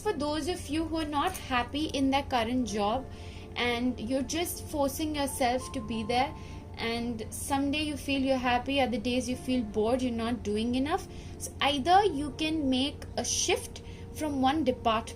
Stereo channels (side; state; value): both; identical; correlation 1.00